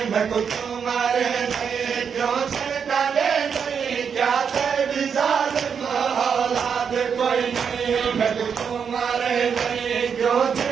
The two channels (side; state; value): left; quieter; 6.8 dB